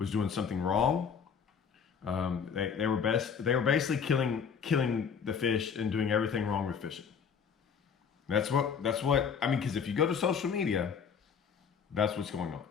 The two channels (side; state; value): right; quieter; 6.7 dB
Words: doing something wrong. They were basically killing the fish and doing everything wrong with fishing. That's what I mean. Because if you go to social media, that's what's going on.